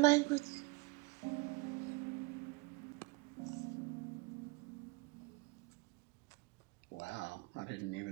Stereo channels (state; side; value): quieter; left; 26.3 dB